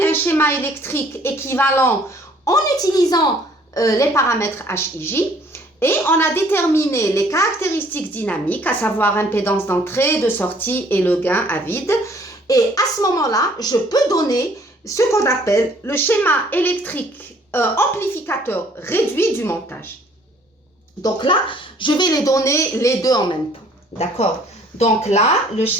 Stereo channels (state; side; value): normal; both; correlation 0.59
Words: un schéma électrique équivalent en utilisant les paramètres HIJ. Et on a déterminé les caractéristiques dynamiques, à savoir impédance d'entrée, de sortie et le gain à vide. Et à ce moment-là, je peux donner ce qu'on appelle le schéma électrique amplificateur réduit du montage. Donc là, je vais les donner les deux en même temps. D'accord? Donc là, le